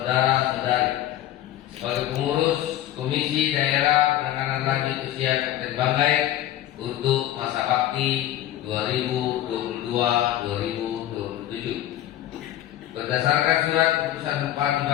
sebagai pengurus Komisi Daerah Penanganan Lanjut Usia Kabupaten Banggai untuk masa bakti 2022-2027. Berdasarkan surat keputusan Bupati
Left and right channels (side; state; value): right; quieter; 13.1 dB